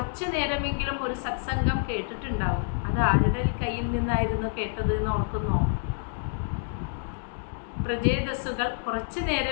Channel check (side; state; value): right; silent; digital silence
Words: നേരമെങ്കിലും ഒരു സത്സംഗം കേട്ടിട്ടുണ്ടാവും. അത് ആരുടെ കയ്യിൽ നിന്നായിരുന്നു കേട്ടത് എന്ന് ഓർക്കുന്നോ? പ്രചേതസ്സുകൾ കുറച്ചു